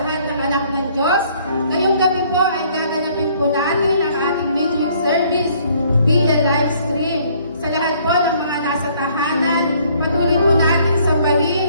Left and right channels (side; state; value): both; inverted; correlation -0.62